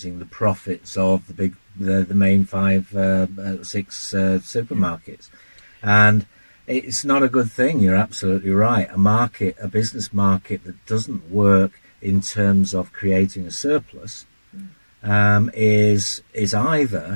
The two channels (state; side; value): inverted; both; correlation -1.00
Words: the profits of the main 6 supermarkets, and it's not a good thing. You're absolutely right. A business market that doesn't work in terms of creating a surplus is